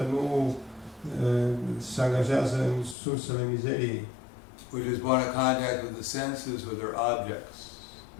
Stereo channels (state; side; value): drops out; right; at 3.0 s